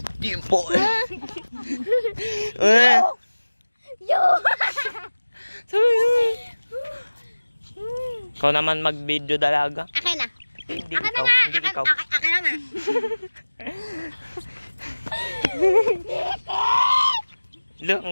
Dimple. Yo! Ikaw naman mag-video dalaga. Akin na. Hindi Akin na ikaw. nga. Hindi ikaw. Akin na nga. Look,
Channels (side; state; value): both; inverted; correlation -1.00